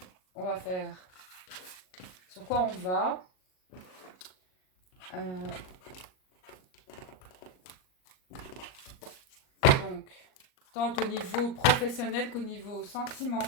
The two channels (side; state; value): right; late; 38 ms